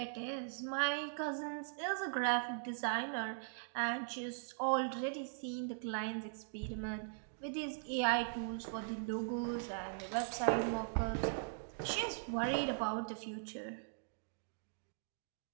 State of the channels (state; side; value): silent; left; digital silence